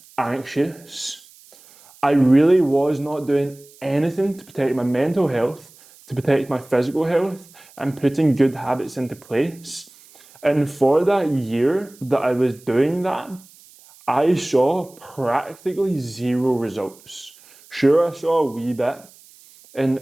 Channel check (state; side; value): noise; right; hiss, 25 dB below the sound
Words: anxious. I really was not doing anything to protect my mental health, to protect my physical health, and putting good habits into place. And for that year that I was doing that, I saw practically zero results. Sure, I saw a wee bit. And